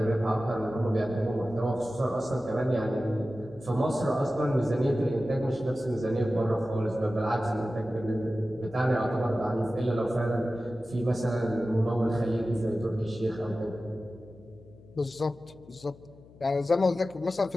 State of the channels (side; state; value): left; noise; hum, 23 dB below the sound